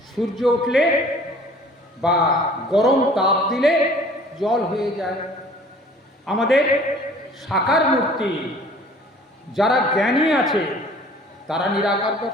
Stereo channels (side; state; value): both; normal; correlation 0.51